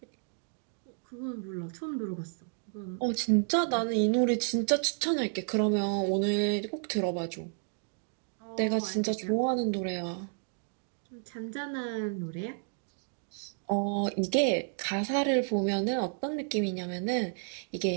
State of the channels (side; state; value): left; silent; 55 dB below the other